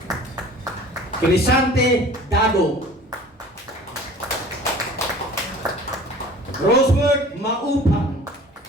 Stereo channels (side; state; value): both; normal; correlation 0.45